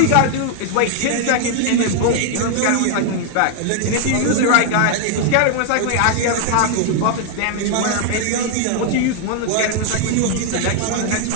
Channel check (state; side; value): different; both; correlation 0.00